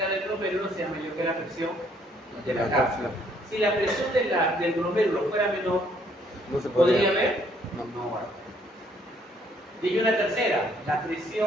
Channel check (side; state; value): both; normal; correlation 0.66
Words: del glomérulo sea mayor que la presión de la La cápsula. cápsula. Si la presión del glomérulo fuera menor, No se ¿podría podría. haber? No. va. Y una tercera, la